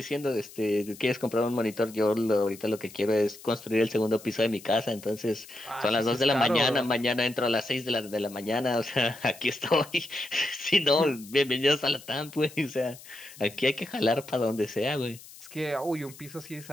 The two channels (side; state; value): left; noise; hiss, 19 dB below the sound